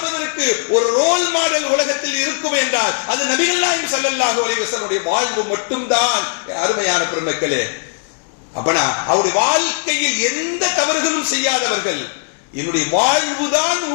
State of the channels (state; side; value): silent; right; 67 dB below the other